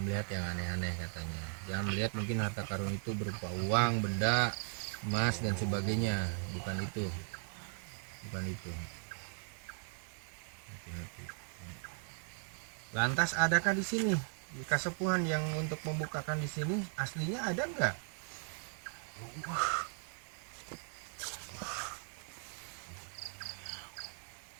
melihat yang aneh-aneh katanya. Jangan melihat mungkin harta karun itu berupa uang, benda, emas dan sebagainya. Bukan itu. Bukan itu. Hati-hati. Lantas adakah di sini kasepuhan yang untuk membukakan di sini aslinya ada enggak?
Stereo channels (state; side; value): silent; left; 52 dB below the other